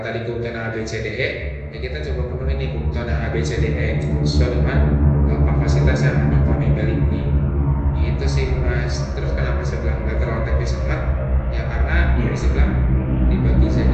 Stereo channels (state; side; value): identical; both; correlation 1.00